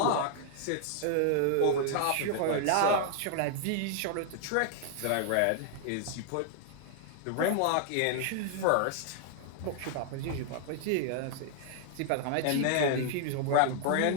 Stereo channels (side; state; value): both; different; correlation 0.00